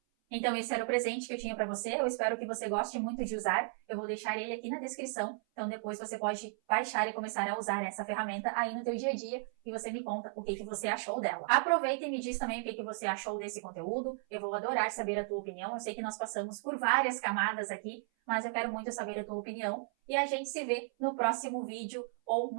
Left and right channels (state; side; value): silent; left; 54 dB below the other